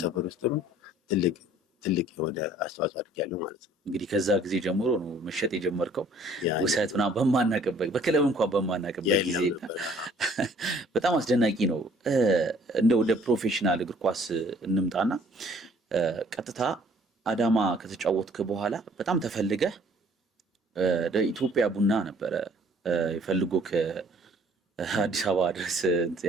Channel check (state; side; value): normal; both; correlation 0.57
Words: ውስጥም ትልቅ የሆነ አስተዋጽኦ አድርጊያለሁ ማለት ነው። እንግዲህ ከዛ ጊዜ ጀምሮ ነው መሸጥ የጀመርከው ውሰት ምናምን በማናቅበት በክለብ እንኳን በማናቅበት ጊዜ በጣም አስደናቂ ነው። እንደ ወደ ፕሮፌሽናል እግር ኳስ እንምጣና ቀጥታ አዳማ ከተጫወትክ በኋላ በጣም ተፈልገህ ኢትዮጵያ ቡና ነበረ ይፈልጎ ከአዲስ አበባ ድረስ